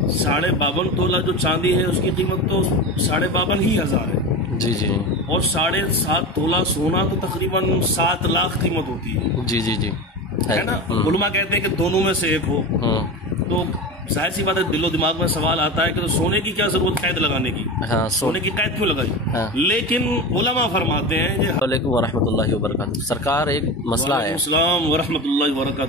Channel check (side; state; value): both; normal; correlation 0.26